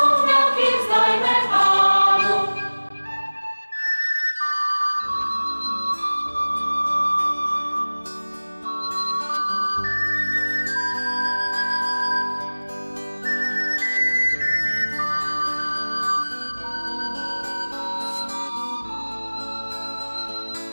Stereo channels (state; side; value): inverted; both; correlation -1.00